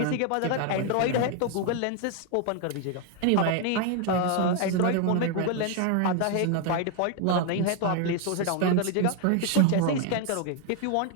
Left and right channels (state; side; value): different; both; correlation 0.01